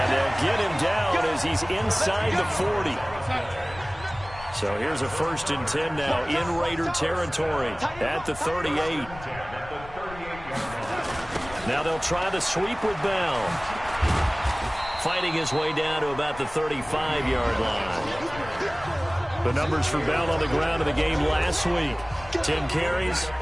they'll get him down as he's inside the 40. So here's a 1st and 10 now in Raider territory at the 38. Now they'll try the sweep with Bell. Fighting his way down to about the 35-yard line. The numbers for Bell on the ground in the game last week. 10 carries,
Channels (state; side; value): noise; left; rumble, 16 dB below the sound